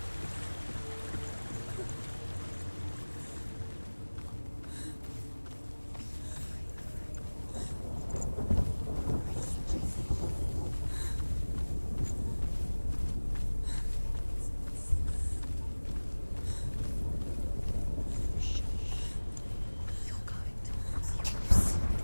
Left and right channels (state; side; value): inverted; both; correlation -1.00